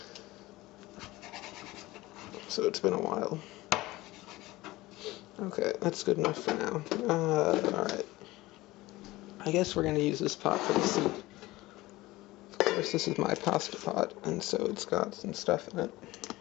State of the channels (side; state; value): right; quieter; 19.1 dB